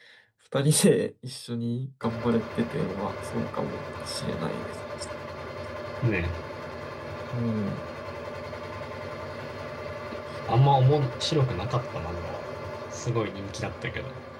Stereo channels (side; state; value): both; identical; correlation 1.00